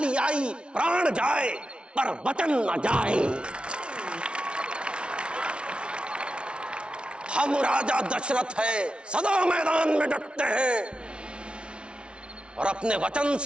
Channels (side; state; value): left; late; 0.058 ms